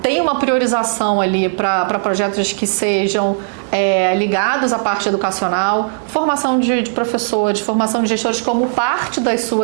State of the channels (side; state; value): left; silent; digital silence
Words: tem uma priorização ali para projetos que sejam ligados à parte educacional, formação de professores, formação de gestores como parte das